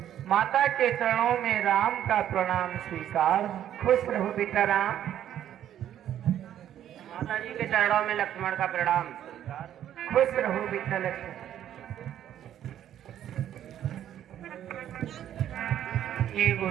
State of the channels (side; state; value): left; quieter; 11.0 dB